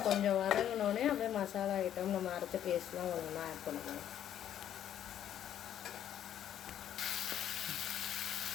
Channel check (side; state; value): right; quieter; 10.6 dB